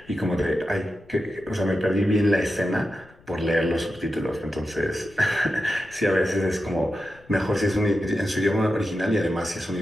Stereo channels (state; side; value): noise; left; rumble, 27 dB below the sound